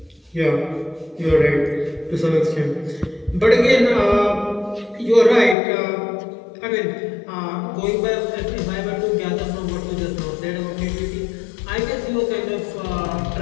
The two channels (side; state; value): right; drops out; at 5.6 s